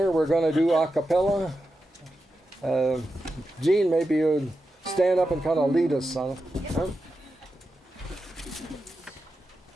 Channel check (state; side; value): normal; both; correlation 0.90